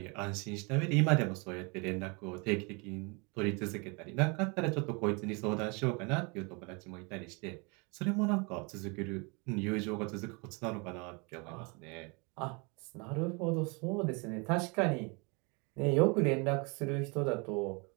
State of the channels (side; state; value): left; quieter; 30.9 dB